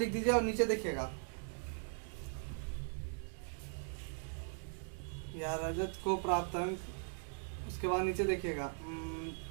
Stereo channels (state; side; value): silent; left; 51 dB below the other